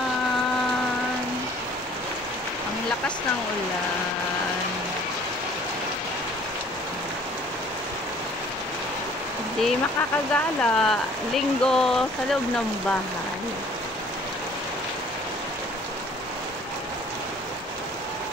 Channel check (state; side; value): normal; both; correlation 0.54